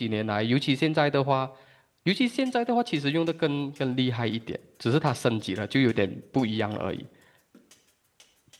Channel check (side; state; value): both; identical; correlation 1.00